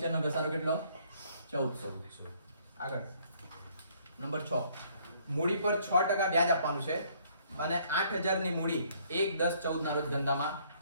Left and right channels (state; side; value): inverted; both; correlation -0.64